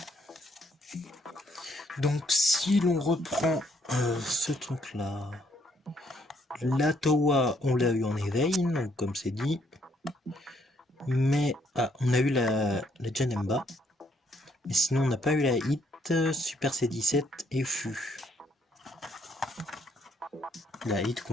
Donc si l'on reprend ce truc là, la Towa on l'a eu en éveil, donc comme c'est dit, mais on a eu la Janemba, mais sinon on n'a pas eu la Hit, Super C17 et Fu. La Hit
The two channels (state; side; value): normal; both; correlation 0.69